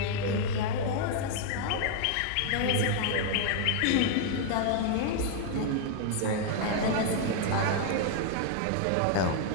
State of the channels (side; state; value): both; different; correlation 0.00